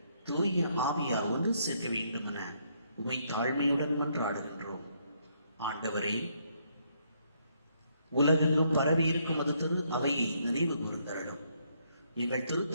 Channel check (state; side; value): inverted; both; correlation -0.72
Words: தூய ஆவியார் ஒன்று சேர்க்க வேண்டும் என உமை தாழ்மையுடன் மன்றாடுகின்றோம். ஆண்டவரே, உலகெங்கும் பரவி இருக்கும் அது திரு அவையை நினைவு கூர்ந்தருளும். எங்கள்